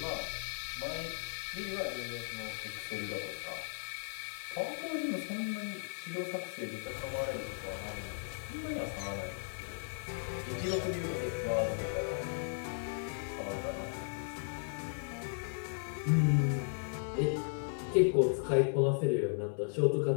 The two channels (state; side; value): silent; right; 54 dB below the other